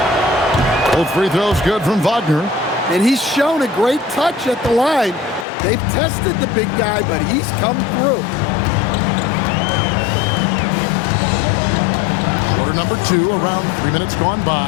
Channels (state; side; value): drops out; right; at 5.5 s